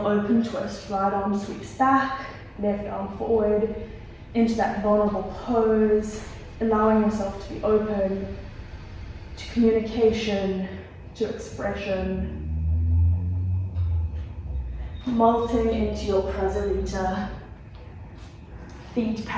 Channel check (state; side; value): identical; both; correlation 1.00